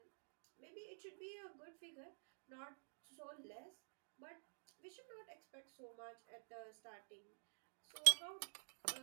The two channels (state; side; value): silent; left; digital silence